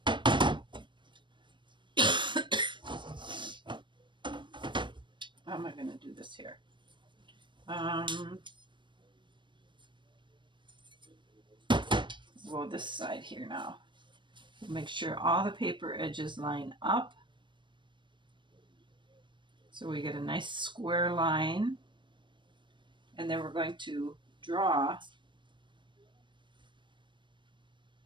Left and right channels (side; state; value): left; late; 0.23 ms